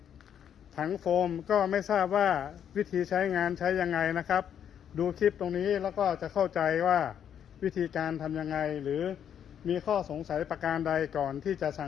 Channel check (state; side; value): quieter; right; 9.0 dB